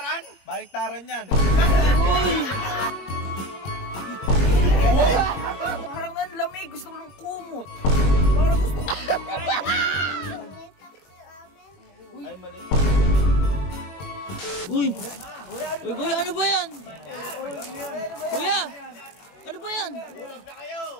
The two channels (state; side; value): late; right; 21 ms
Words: Baliktaran yan. Parang ang lamig. Gusto ko ng kumot. Parang gusto ko. Ay, mali. Uy! Uy, kuya, ano ba yan? Kuya! Ano ba yan? Tulog na kayo!